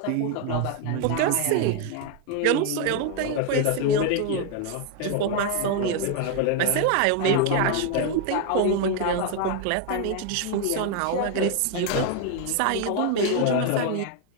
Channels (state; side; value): different; both; correlation 0.01